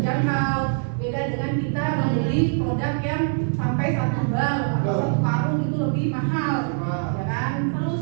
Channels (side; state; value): left; silent; digital silence